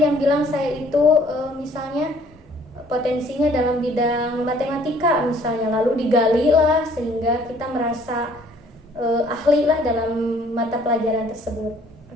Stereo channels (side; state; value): both; normal; correlation 0.58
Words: yang bilang saya itu misalnya potensinya dalam bidang matematika misalnya, lalu digali lah sehingga kita merasa ahli lah dalam mata pelajaran tersebut.